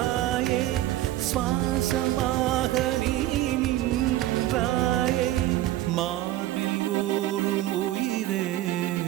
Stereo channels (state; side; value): quieter; left; 14.7 dB